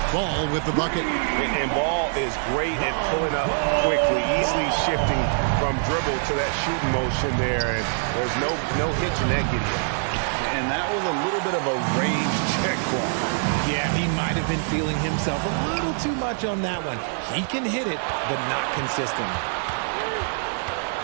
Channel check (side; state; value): left; silent; 62 dB below the other